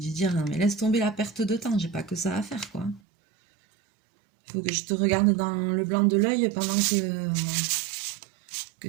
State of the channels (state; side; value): drops out; left; at 3.0 s